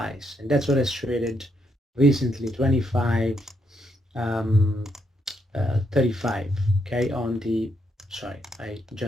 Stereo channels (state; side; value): normal; both; correlation 0.77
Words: and that's what has traded recently, 25 35. Okay, on the sorry, I